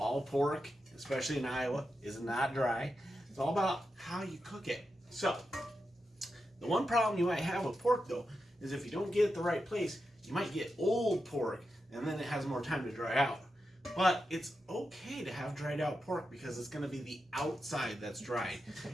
pork, especially in Iowa, is not dry. It's all about how you cook it. So, the one problem you might have with pork, though, is if you don't get it the right place, you might get old pork, and then it has more time to dry out. But it's okay to have dried out pork because it's going to be the outside that's dried.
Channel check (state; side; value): normal; both; correlation 0.88